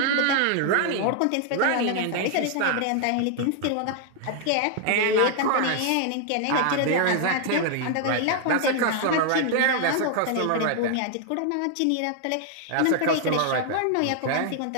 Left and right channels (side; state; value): both; different; correlation 0.00